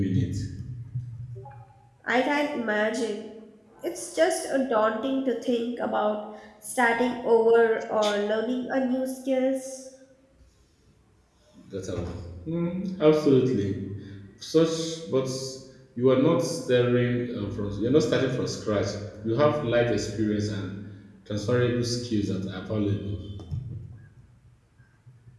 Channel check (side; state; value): both; identical; correlation 1.00